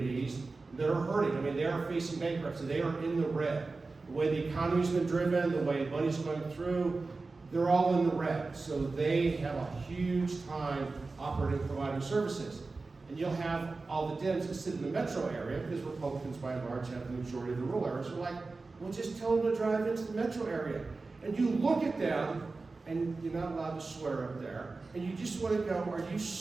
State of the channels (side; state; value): left; quieter; 3.8 dB